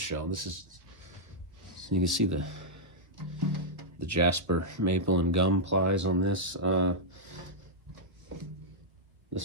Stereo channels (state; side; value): late; left; 1.2 ms